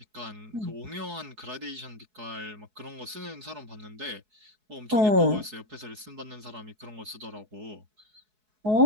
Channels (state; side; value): late; left; 4.7 ms